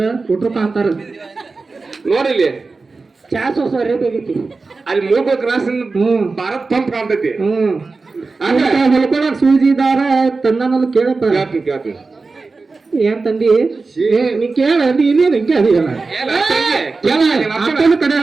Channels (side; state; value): left; quieter; 4.0 dB